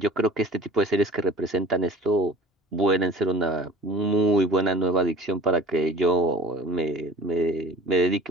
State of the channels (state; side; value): normal; both; correlation 0.44